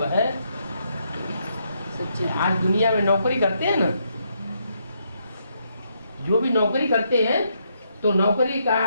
है। आज दुनिया में नौकरी करते हैं ना, जो भी नौकरी करते हैं, तो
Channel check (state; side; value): inverted; both; correlation -0.77